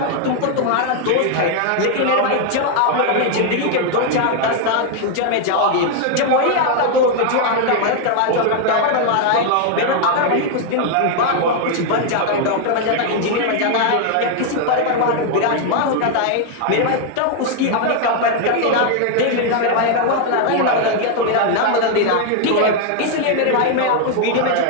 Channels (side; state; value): both; different; correlation 0.00